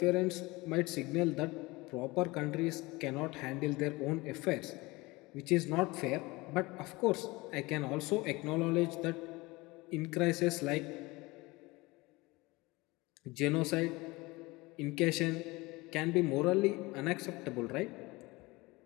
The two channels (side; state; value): right; quieter; 22.5 dB